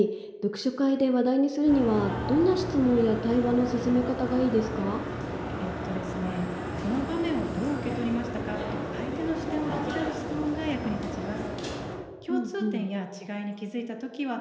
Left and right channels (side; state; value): both; identical; correlation 1.00